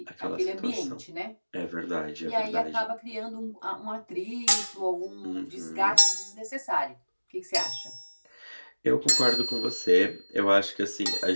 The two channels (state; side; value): inverted; both; correlation -1.00